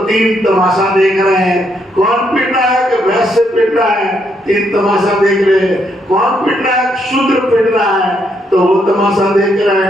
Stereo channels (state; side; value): normal; both; correlation 0.75